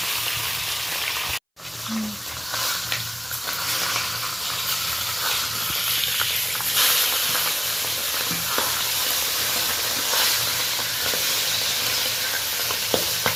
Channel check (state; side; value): identical; both; correlation 1.00